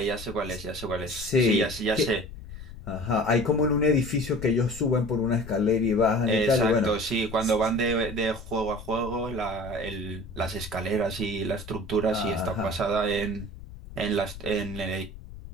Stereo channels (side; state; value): left; noise; rumble, 14 dB below the sound